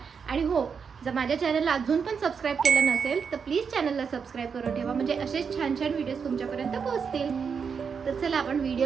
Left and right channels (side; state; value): left; quieter; 6.2 dB